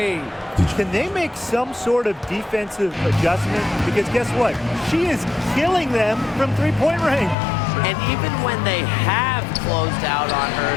Can they make some sort of defensive adjustment? Because guess what? She is killing them from three-point range. And even when they have closed out on her,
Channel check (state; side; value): drops out; right; at 7.4 s